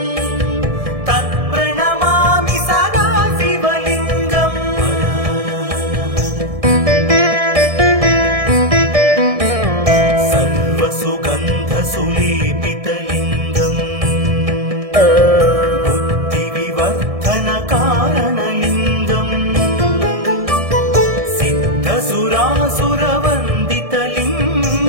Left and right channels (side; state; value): left; late; 1.6 ms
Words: तत्प्रणमामि सदा शिवलिङ्गम् सर्वसुगन्धसुलेपितलिङ्गम् बुद्धिविवर्धनकारणलिङ्गम्